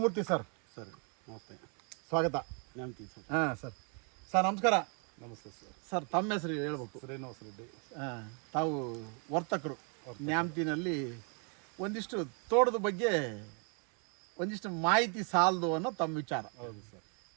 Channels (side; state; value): left; quieter; 38.8 dB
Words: ಸರ್. ಸರ್ ನಮಸ್ತೆ, ಸ್ವಾಗತ. ನ್ಯಾಮತಿ ಸರ್. ಹಾಂ ಸರ್ ನಮಸ್ಕಾರ. ನಮಸ್ತೆ ಸರ್. ಸರ್ ತಮ್ಮ ಹೆಸರು ಹೇಳ್ಬೇಕು. ಶ್ರೀನಿವಾಸ ರೆಡ್ಡಿ. ತಾವು ವರ್ತಕರು ನ್ಯಾಮತಿನಲ್ಲಿ. ಒಂದಿಷ್ಟು ತೋಟದ ಬಗ್ಗೆ ಒಂದಿಷ್ಟು ಮಾಹಿತಿ ಸಾಲದು ಅನ್ನೋ ತಮ್ಮ ವಿಚಾರ. ಹೌದು ಸರ್.